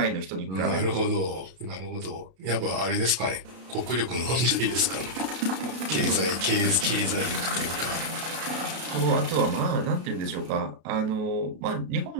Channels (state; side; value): late; left; 32 ms